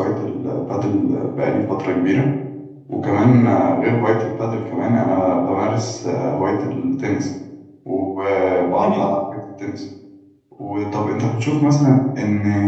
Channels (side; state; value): both; identical; correlation 1.00